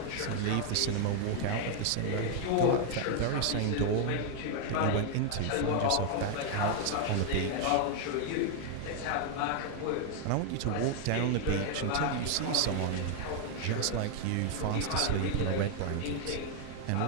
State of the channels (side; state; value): both; different; correlation 0.00